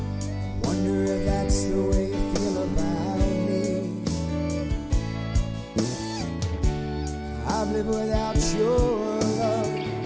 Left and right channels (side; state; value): both; identical; correlation 1.00